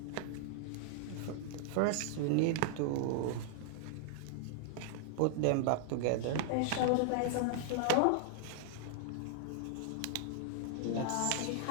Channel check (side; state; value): both; different; correlation 0.00